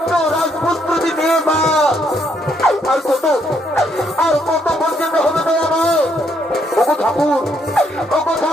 রাজপুত্রটি নিয়ে মা আর কত পর্যন্ত হবে তো আমার ওগো ঠাকুর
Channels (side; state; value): both; normal; correlation 0.72